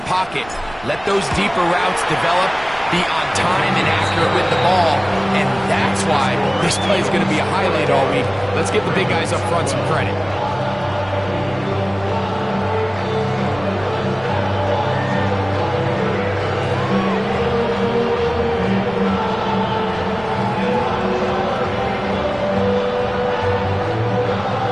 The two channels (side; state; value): right; noise; rumble, 19 dB below the sound